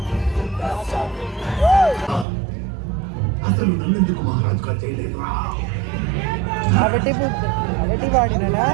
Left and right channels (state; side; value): drops out; left; at 2.2 s